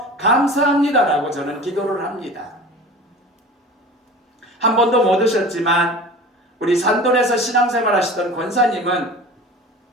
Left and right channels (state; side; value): normal; both; correlation 0.38